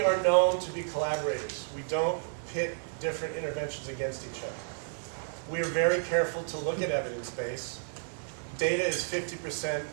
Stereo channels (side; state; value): left; silent; digital silence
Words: known to be collaborators. We don't pit different interventions against each other. We are very careful to look at evidence base. Data is 50%